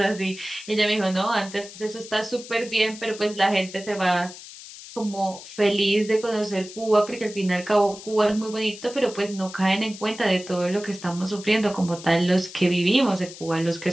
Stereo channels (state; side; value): noise; left; hiss, 15 dB below the sound